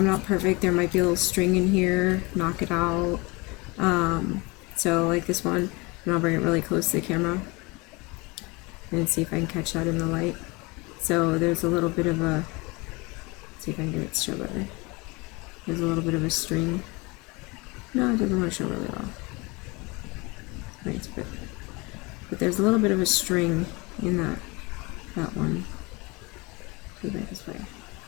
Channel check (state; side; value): quieter; right; 26.0 dB